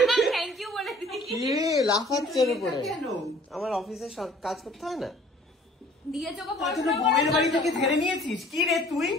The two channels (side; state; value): both; normal; correlation 0.53